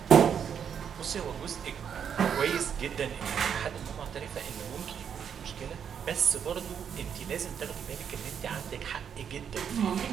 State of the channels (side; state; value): left; quieter; 7.9 dB